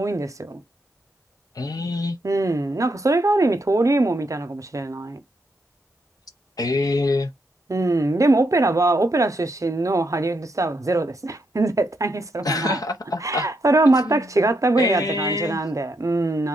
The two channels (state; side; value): normal; both; correlation 0.79